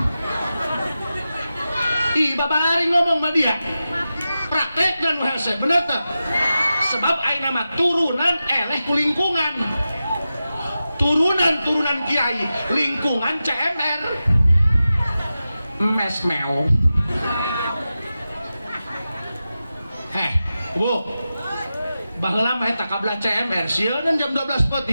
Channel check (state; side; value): inverted; both; correlation -0.93